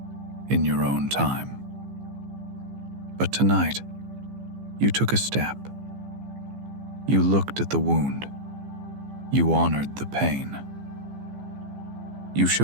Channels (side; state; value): left; late; 15 ms